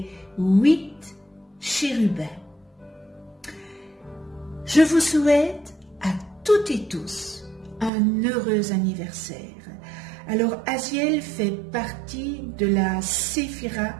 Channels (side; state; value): left; drops out; at 7.9 s